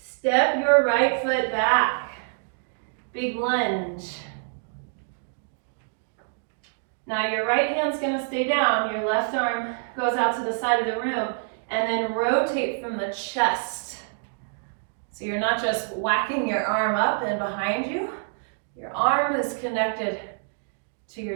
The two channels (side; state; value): left; silent; digital silence